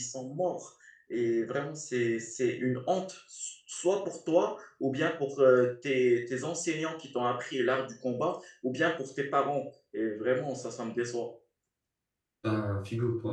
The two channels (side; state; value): both; identical; correlation 1.00